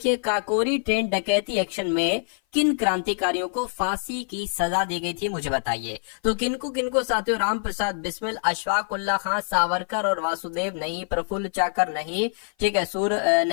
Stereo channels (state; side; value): silent; right; 56 dB below the other